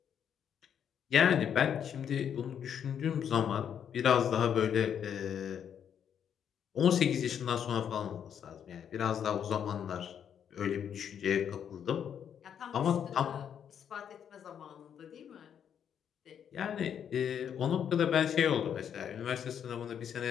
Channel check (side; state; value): right; quieter; 8.5 dB